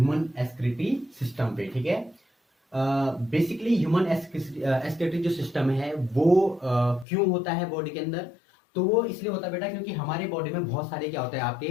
एक्सक्रीटरी सिस्टम पे। ठीक है, बेसिकली ह्यूमन एक्सक्रीटरी जो सिस्टम है वो क्यों होता है बॉडी के अंदर। तो वो इसलिए होता है बेटा क्योंकि हमारे बॉडी में बहुत सारे क्या होते हैं आपके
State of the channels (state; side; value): drops out; right; at 7.1 s